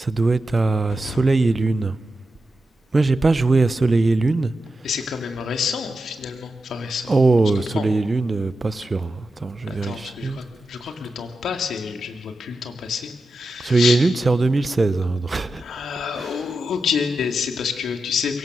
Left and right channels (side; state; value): both; normal; correlation 0.89